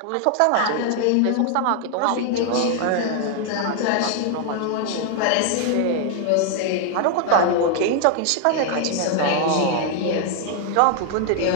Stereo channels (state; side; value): different; both; correlation 0.00